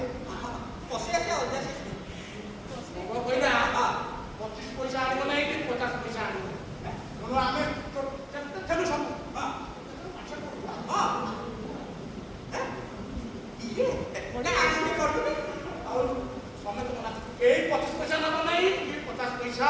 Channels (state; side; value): identical; both; correlation 1.00